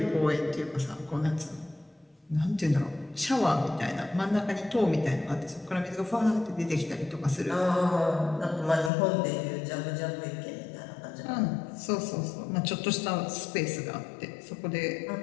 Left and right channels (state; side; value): drops out; right; at 8.9 s